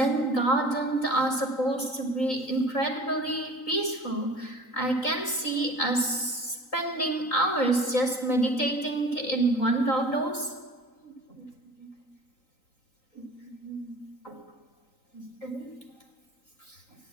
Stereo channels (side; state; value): right; late; 3.9 ms